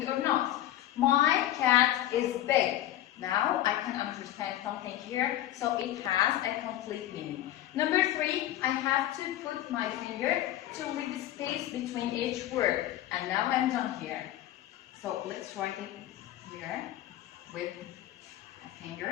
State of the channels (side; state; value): right; quieter; 13.3 dB